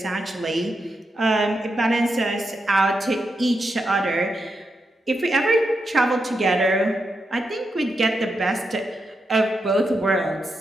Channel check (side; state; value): both; normal; correlation 0.85